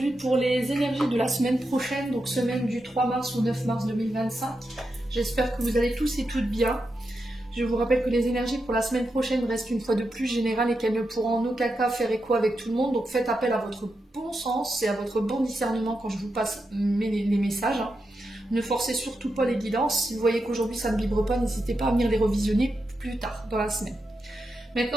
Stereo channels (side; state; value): both; normal; correlation 0.87